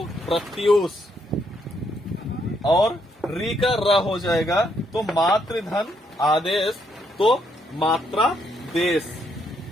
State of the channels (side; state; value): both; normal; correlation 0.74